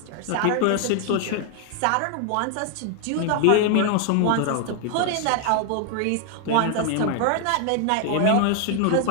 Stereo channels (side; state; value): both; different; correlation 0.00